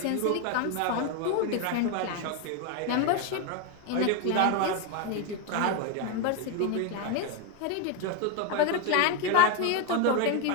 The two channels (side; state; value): both; different; correlation 0.02